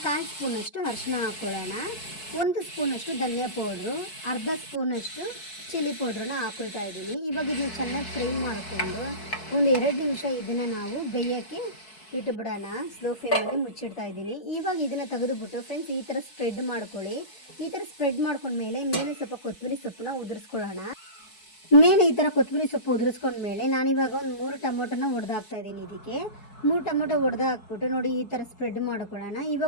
1/4 ಸ್ಪೂನಷ್ಟು ಅರಿಶಿನ ಹಾಕ್ಕೊಳ್ಳೋಣ. 1 ಸ್ಪೂನಷ್ಟು ಧನಿಯಾ ಪೌಡ್ರು, ಅರ್ಧ ಸ್ಪೂನಷ್ಟು ಚಿಲ್ಲಿ ಪೌಡ್ರನ್ನ ಹಾಕ್ಕೊಳ್ತಾ ಇದ್ದೀನಿ. ಇವಾಗ ಇದನ್ನ ಚೆನ್ನಾಗಿ ಫ್ರೈ ಮಾಡಿಕೊಂಡು ಒಂದು 2 ನಿಮಿಷ ಇದನ್ನು ನಾವು ಬೇಯೋಕ್ಕೆ ಇಟ್ಬಿಡೋಣ. ಸ್ಲೋ ಫ್ಲೇಮಲ್ಲಿ ಮುಚ್ಚಿಡ್ತಾ ಇದ್ದೀನಿ. ಇವಾಗ ಇದನ್ನು ತೆಗೆದುಬಿಟ್ಟು ಫ್ರೆಂಡ್ಸ್ ಈ ಥರ ಸ್ಪ್ರೆಡ್ ಮಾಡ್ಕೊಳ್ಳಿ. ಈ ಥರ ಸ್ಪ್ರೆಡ್ ಮಾಡ್ಕೊಂಡ್ಮೇಲೆ ಮೇಲೆ ಸ್ವಲ್ಪ ಕೊತ್ತಂಬರಿ ಸೊಪ್ಪನ್ನ ಉದುರಿಸ್ಕೊಳ್ಳೋಣ. ಮೇಲೆ ಈ ಥರ ಕೊತ್ತಂಬರಿ ಸೊಪ್ಪು ಉದುರಿಸ್ಕೊಂಡ್ಮೇಲೆ ನಾನಿವಾಗ ಒಂದು 3 ಟೊಮೊಟೊನ ಹೊಡೆದಾಕ್ತಾ ಇದ್ದೀನಿ. ಇದಕ್ಕೆ 3 ಟೊಮೊಟೊ ಹೊಡೆದಾಕ್ಬಿಟ್ಟು ನೋಡಿ ಈ ಥರ ಸ್ಪ್ರೆಡ್ ಮಾಡ್ಕೊಳ್ಳೋಣ.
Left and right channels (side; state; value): right; late; 4.6 ms